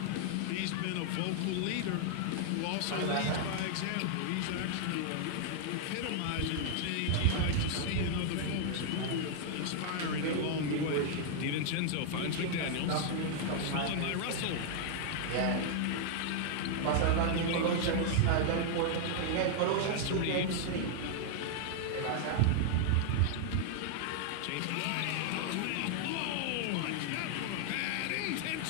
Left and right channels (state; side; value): different; both; correlation 0.00